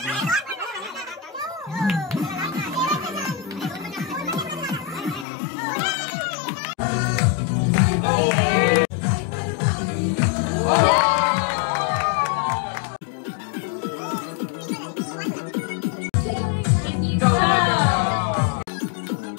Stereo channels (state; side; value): drops out; right; at 5.2 s